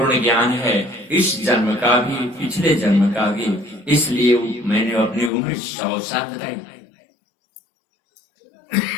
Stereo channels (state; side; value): drops out; right; at 5.3 s